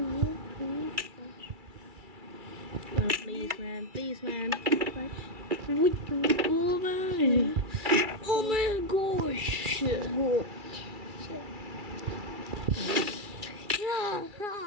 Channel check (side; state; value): left; late; 2.3 ms